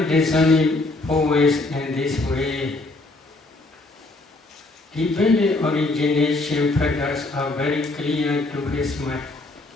discerning four ways in this way, dependent origination factors are very clear to his mind.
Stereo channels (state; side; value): quieter; right; 3.0 dB